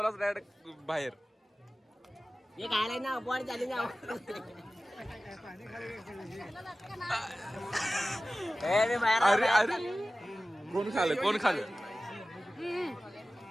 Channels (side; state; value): both; normal; correlation 0.96